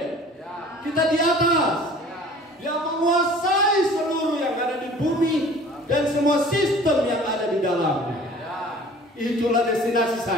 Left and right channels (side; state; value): both; normal; correlation 0.47